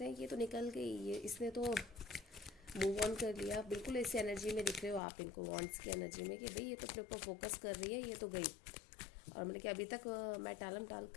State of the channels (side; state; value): right; drops out; at 5.0 s